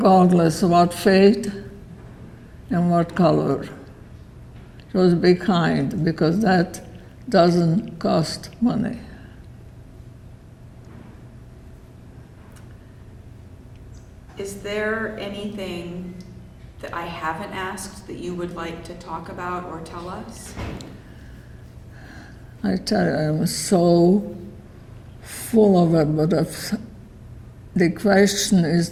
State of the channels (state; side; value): identical; both; correlation 1.00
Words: of what faith and what color. Just be kind, because that doesn't cost money. Is there anything that I haven't asked that you would like to talk about or tell us? I tell you, I'm so full of it, but if the question